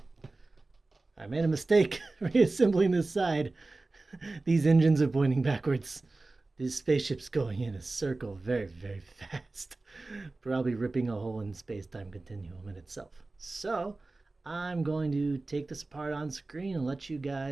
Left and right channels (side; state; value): left; quieter; 3.3 dB